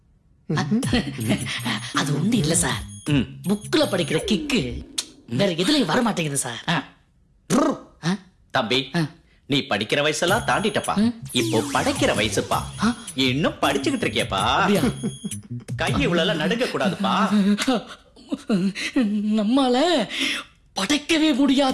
அது ஒண்ணு இல்ல சார், புக்ல படிக்கிற கிக்கு வேற எதுலயும் வர மாட்டேங்குது சார். தம்பி, நீ படிக்கிற வயசெல்லாம் தாண்டிட்டப்பா, இப்போ படைக்கிற வயசுப்பா. இன்னும் படிச்சுக்கிட்டு இருக்கியப்பா, கை இவ்வளவு நடுங்க கூடாதுப்பா. நம்மால படைக்கவே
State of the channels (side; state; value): both; identical; correlation 1.00